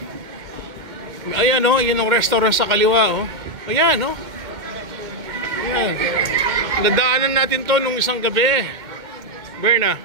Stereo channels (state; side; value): late; left; 2.1 ms